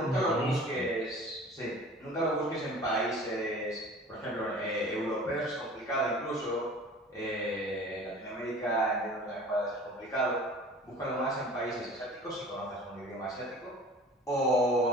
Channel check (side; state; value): both; normal; correlation 0.44